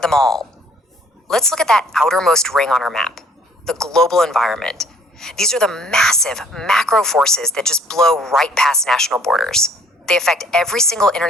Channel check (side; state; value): both; normal; correlation 0.59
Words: them all. Let's look at that outermost ring on our map, the global environment. These are the massive macro forces that just blow right past national borders. They affect every single